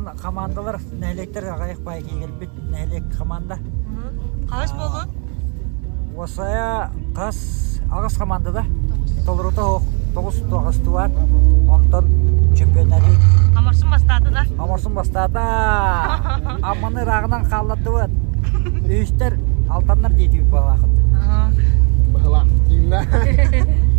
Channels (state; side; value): quieter; left; 37.5 dB